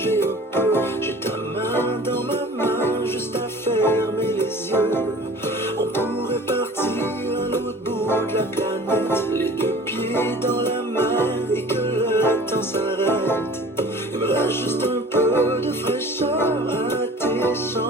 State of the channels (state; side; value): normal; both; correlation 0.44